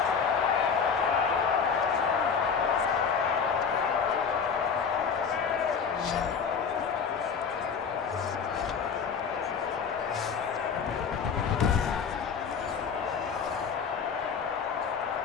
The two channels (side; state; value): right; quieter; 6.2 dB